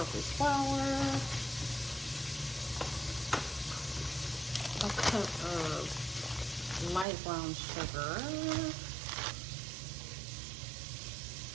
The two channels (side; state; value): left; drops out; at 7.1 s